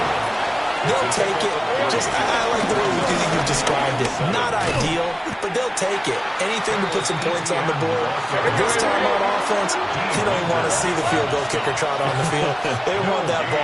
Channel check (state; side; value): identical; both; correlation 1.00